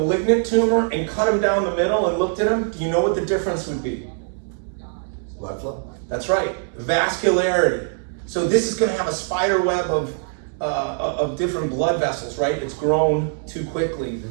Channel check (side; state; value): left; silent; 64 dB below the other